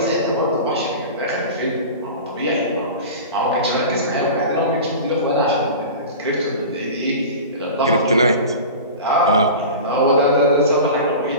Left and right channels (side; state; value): both; inverted; correlation -0.33